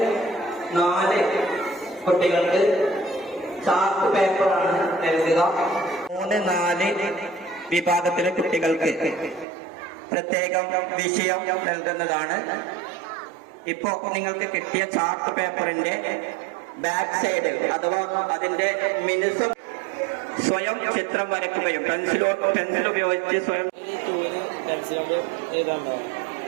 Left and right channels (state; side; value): drops out; left; at 9.5 s